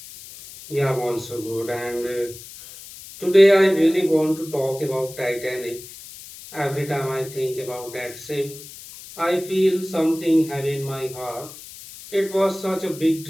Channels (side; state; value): left; noise; hiss, 16 dB below the sound